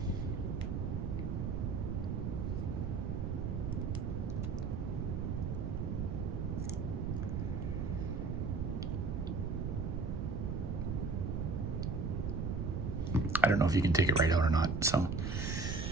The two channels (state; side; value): noise; right; rumble, 1 dB below the sound